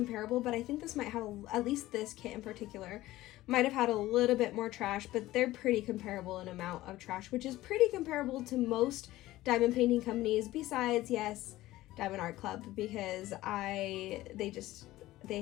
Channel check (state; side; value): quieter; right; 16.5 dB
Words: but I think this might have, at least this kit in particular, might have had a little bit more trash, but they're pretty comparable in amount of trash, which is pretty comparable to most diamond painting companies besides, yes, Diamond Art Club, because they